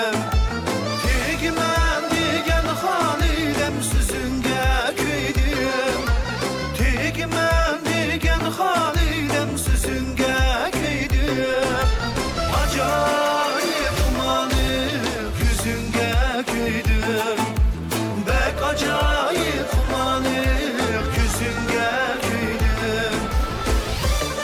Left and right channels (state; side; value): identical; both; correlation 1.00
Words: Tegmen diyen Halidem Süzünge köydüm Tegmen diyen Halidem Süzünge köydüm Acayip umanık yüzünge köydüm Bek acayip umanık yüzünge köydüm